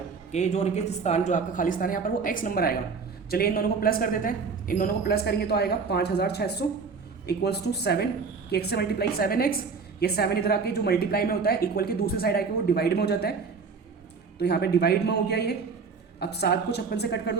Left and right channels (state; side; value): quieter; left; 5.1 dB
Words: कि जो रिक्त स्थान, जो आपका खाली स्थान है यहाँ पर वो x नंबर आएगा। चलिए इन दोनों को प्लस कर देते हैं। इन दोनों को प्लस करेंगे तो आएगा 5600 इक्वल्स टू 7 कि x से मल्टीप्लाई 7x। ये 7 इधर आके जो मल्टीप्लाई में होता है इक्वल के दूसरी साइड आके वो डिवाइड में हो जाता है, तो यहाँ पे डिवाइड में हो गया ये। अब 7 को 56 से कट कर